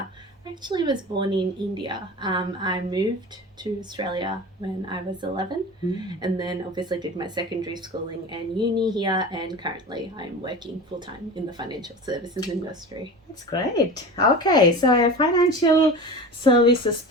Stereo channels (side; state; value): both; normal; correlation 0.33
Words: I actually was born in India. I moved to Australia when I was 11 and then obviously did my secondary schooling and uni here, and currently I'm working full time in the financial services industry. That's great. Okay, so a financial services